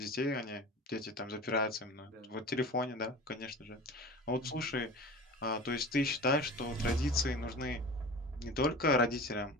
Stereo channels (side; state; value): both; normal; correlation 0.35